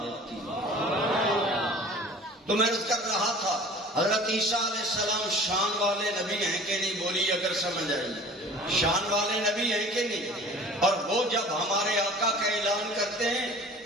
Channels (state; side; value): normal; both; correlation 0.44